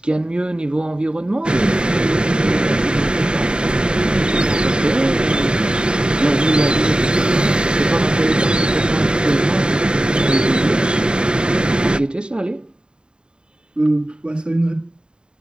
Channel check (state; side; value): late; left; 0.050 ms